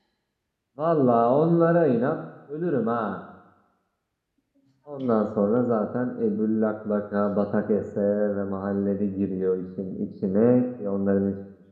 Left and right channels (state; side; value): identical; both; correlation 1.00